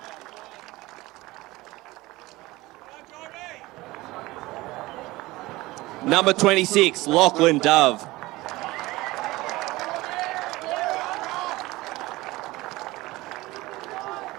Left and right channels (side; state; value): left; quieter; 19.8 dB